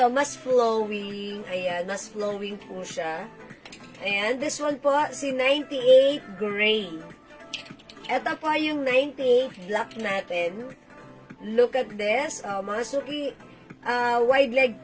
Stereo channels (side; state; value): both; identical; correlation 1.00